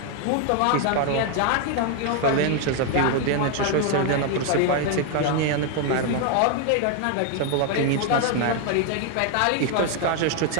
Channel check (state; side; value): different; both; correlation 0.01